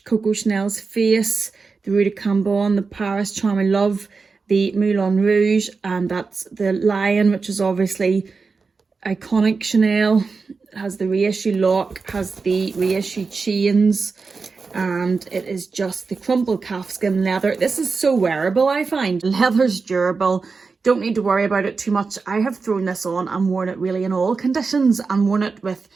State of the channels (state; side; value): quieter; left; 4.6 dB